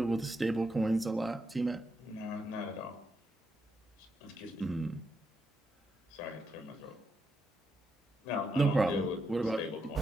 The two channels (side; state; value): both; normal; correlation 0.82